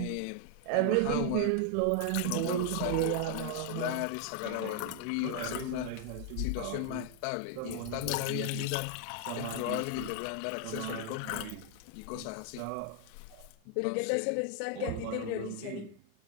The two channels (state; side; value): different; both; correlation 0.00